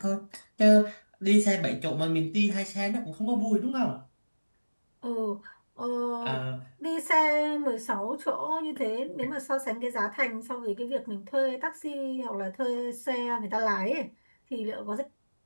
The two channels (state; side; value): inverted; both; correlation -1.00